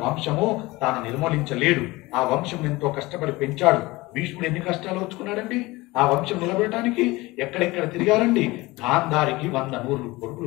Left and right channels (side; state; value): right; quieter; 21.1 dB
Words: వంశము తాను నిర్మూలించలేడు. ఆ వంశం ఎంతో కష్టపడి పెంచాడు. భీష్ముడు ఎన్ని కష్టాలు వచ్చుకున్నాడండి ఆ వంశం నిలబెట్టడానికి. ఎక్కడెక్కడ తిరిగారండి. గాంధారికి 100 నూర్లు